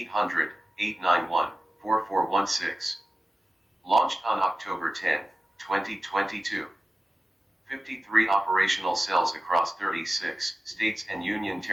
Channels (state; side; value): normal; both; correlation 0.95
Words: Launched on October 10, 2022. 53 operational cells across 36 states and union